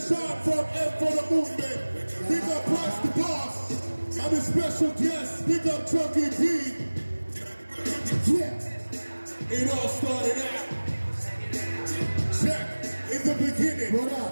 from M for the Movement. Big up Price the Boss. I'm a special guest. Big up Chunky B. Yeah. It all started out. Check. In the beginning, what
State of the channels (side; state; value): both; inverted; correlation -1.00